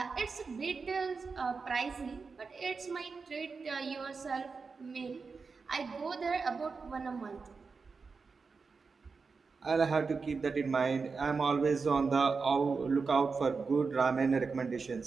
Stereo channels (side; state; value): left; quieter; 4.8 dB